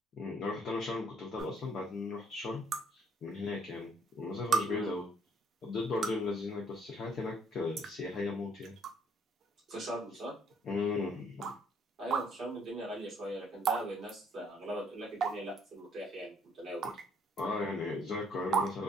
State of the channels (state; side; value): normal; both; correlation 0.64